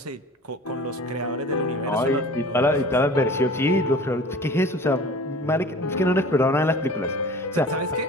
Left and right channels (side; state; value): both; normal; correlation 0.42